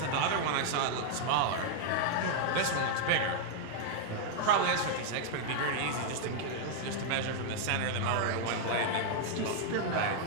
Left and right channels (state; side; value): different; both; correlation 0.00